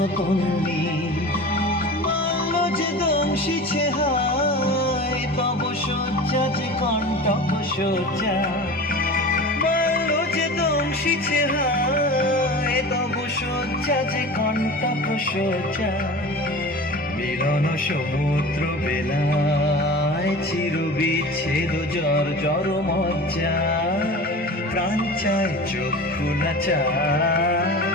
তন্নি। যে দংশিছে হায়, তব শয্যা যে কণ্টক শয্যা। বাল্য যে দংশিছে হায়, তব শয্যা যে কণ্টক শয্যা। মিলন সমুদ্র বেলায়, চির বিচ্ছেদ জর জর মজ্জা। প্রাণ চায় চক্ষু না চায়,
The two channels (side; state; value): both; normal; correlation 0.35